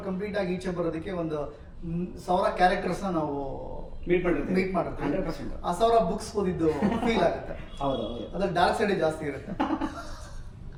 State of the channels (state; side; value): identical; both; correlation 1.00